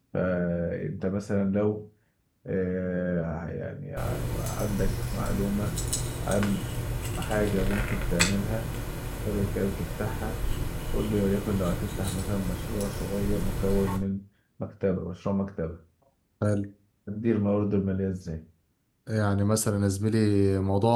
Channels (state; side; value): identical; both; correlation 1.00